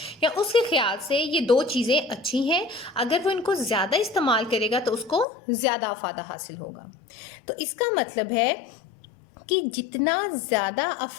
या उसके ख्याल से ये दो चीज़ें अच्छी हैं, अगर वो इनको ज़्यादा इस्तेमाल करेगा तो उसको ज़्यादा अफादा हासिल होगा। तो इसका मतलब है कि जितना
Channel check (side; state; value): right; drops out; at 5.2 s